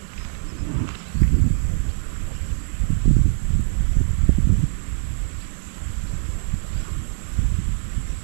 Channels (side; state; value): left; silent; digital silence